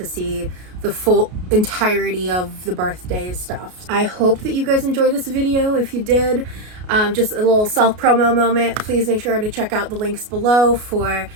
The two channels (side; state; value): left; late; 33 ms